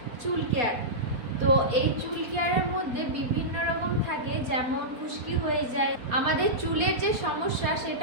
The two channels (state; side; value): late; left; 4.2 ms